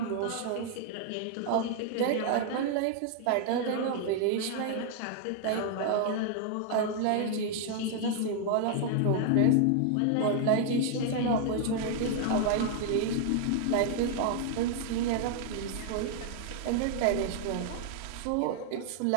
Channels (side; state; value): both; different; correlation 0.00